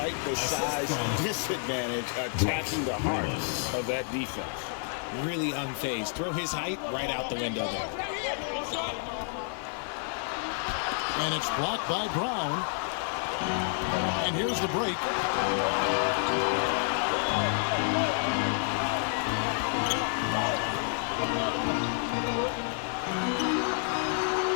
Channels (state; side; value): silent; right; 58 dB below the other